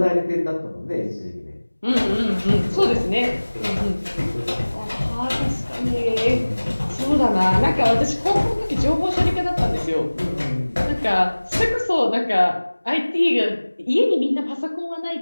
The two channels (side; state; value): both; inverted; correlation -1.00